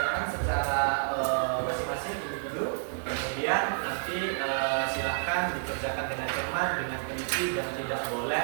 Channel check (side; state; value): left; silent; digital silence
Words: secara masing-masing individu. Kemudian nanti silakan dikerjakan dengan cermat, dengan teliti dan tidak